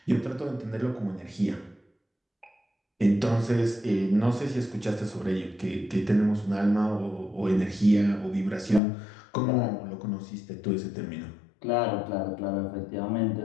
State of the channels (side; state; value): right; drops out; at 8.8 s